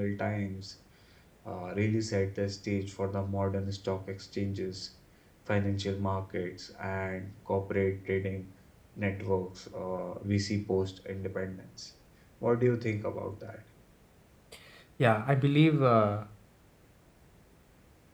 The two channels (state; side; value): identical; both; correlation 1.00